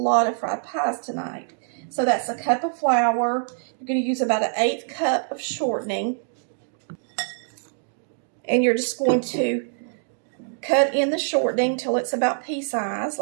of fried pies tonight. So that's a cup of flour. You're going to use about an 1/8 cup of shortening, and you're just going to cut in the shortening till it's about pea size,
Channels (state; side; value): silent; left; digital silence